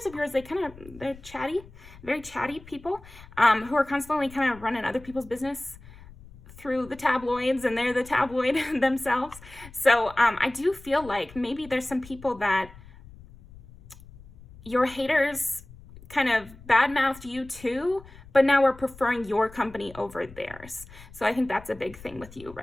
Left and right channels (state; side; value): noise; left; rumble, 20 dB below the sound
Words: of yours, they're chatty, very chatty people, who are constantly kind of running other people's business through the tabloids, and they're the tabloid themselves. So I do feel like maybe there's some people that your haters kind of badmouthed you too, but now we're preferring your company over theirs. So I think that's a big thing with you